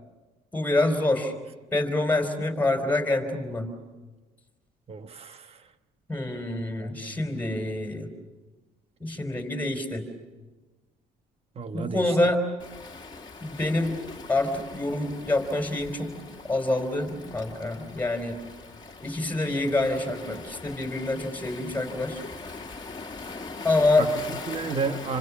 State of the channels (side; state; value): both; normal; correlation 0.79